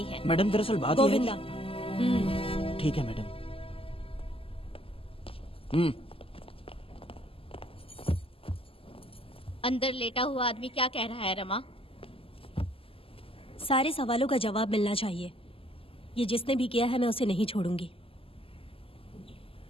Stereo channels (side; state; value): right; late; 0.26 ms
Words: है। मैडम दरअसल बात ये है गोविंदा। कि- ठीक है मैडम। अंदर लेटा हुआ आदमी क्या कह रहा है रमा? सारे सवालों का जवाब मिलना चाहिए। ये जिसने भी किया है मैं उसे नहीं छोड़ूंगी।